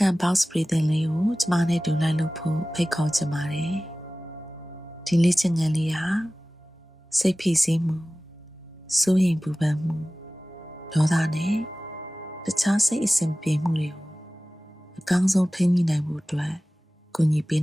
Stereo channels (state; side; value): normal; both; correlation 0.97